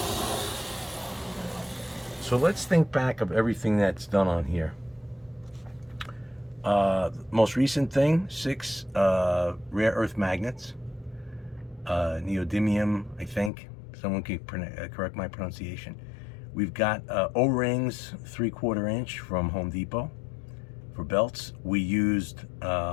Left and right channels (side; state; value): right; drops out; at 13.5 s